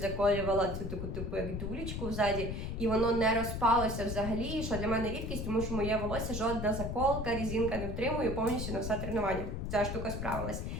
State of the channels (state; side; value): noise; left; rumble, 4 dB below the sound